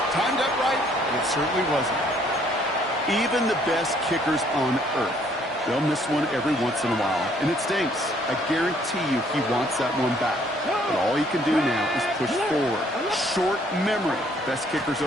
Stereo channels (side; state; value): both; normal; correlation 0.64